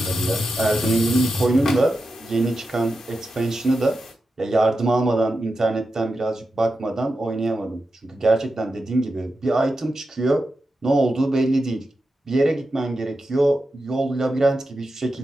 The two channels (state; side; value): normal; both; correlation 0.90